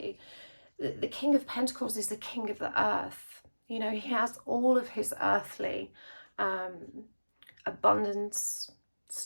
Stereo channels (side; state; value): both; inverted; correlation -1.00